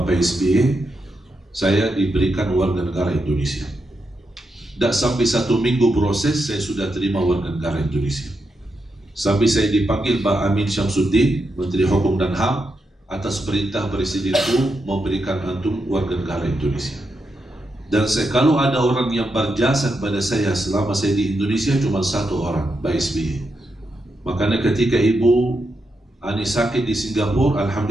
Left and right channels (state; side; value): normal; both; correlation 0.85